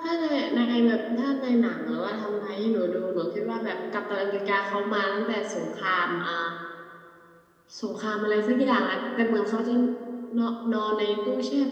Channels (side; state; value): both; identical; correlation 1.00